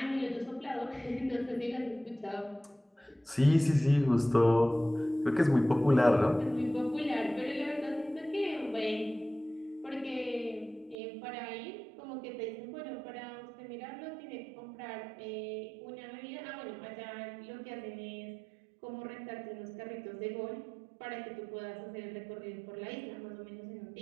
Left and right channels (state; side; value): drops out; left; at 11.0 s